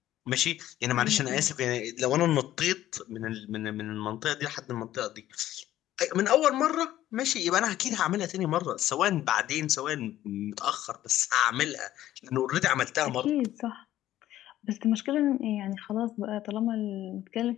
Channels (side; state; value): right; quieter; 13.5 dB